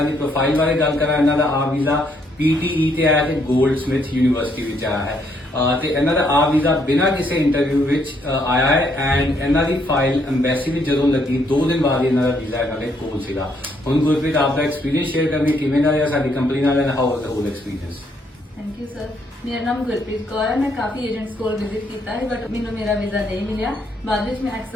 ਦੀ ਪ੍ਰੋਫਾਈਲ ਬਾਰੇ ਗੱਲ ਕਰਾਂ, ਇਹਨਾਂ ਦਾ ਆ ਵੀਜ਼ਾ PTE ਤੇ ਆਇਆ ਤੇ ਗੋਲਡਸਮਿਥ ਯੂਨੀਵਰਸਿਟੀ ਵਿੱਚ ਆਇਆ ਹੈ ਤੇ ਇਹਨਾਂ ਦਾ ਆ ਵੀਜ਼ਾ ਬਿਨਾਂ ਕਿਸੇ ਇੰਟਰਵਿਊ ਵਿੱਚ ਆਇਆ ਹੈ ਐਂਡ ਇਹਨਾਂ ਦੀ ਫਾਈਲ ਐਮਬੈਸੀ ਵਿੱਚ ਜਦੋਂ ਲੱਗੀ 2 ਦਿਨ ਬਾਅਦ ਇਹਨਾਂ ਦਾ ਵੀਜ਼ਾ ਇਹਨਾਂ ਦੇ ਕੋਲ ਸੀਗਾ। ਹੁਣ ਗੁਰਪ੍ਰੀਤ ਆਪ ਦਾ ਐਕਸਪੀਰੀਅੰਸ ਸ਼ੇਅਰ ਕਰਨੀ, ਕਿਵੇਂ ਦਾ ਰਿਹਾ ਸਾਡੀ ਕੰਪਨੀ ਨਾਲ and how was the hole experience. Thank you sir. मेरा नाम गुरप्रीत कौर है। मैं काफ़ी एजेंट्स को विजिट किया है बट मैंने मेरा वीज़ा नहीं मिला। बाद में मैं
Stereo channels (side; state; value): both; normal; correlation 0.72